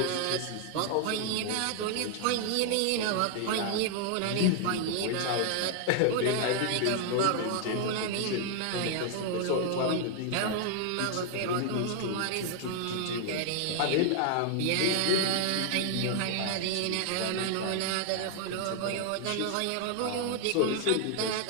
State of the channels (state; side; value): different; both; correlation 0.00